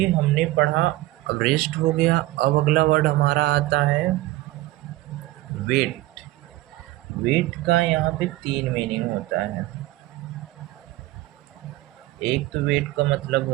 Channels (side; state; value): left; quieter; 17.7 dB